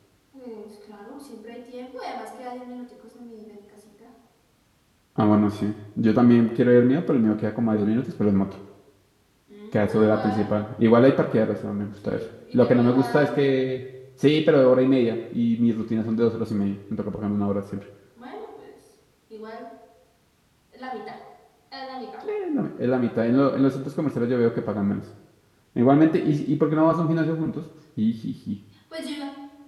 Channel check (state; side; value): identical; both; correlation 1.00